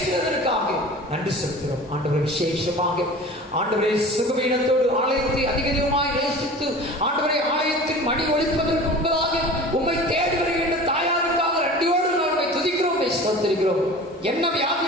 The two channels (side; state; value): both; normal; correlation 0.39